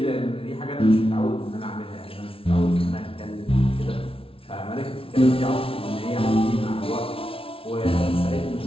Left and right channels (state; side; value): late; right; 0.26 ms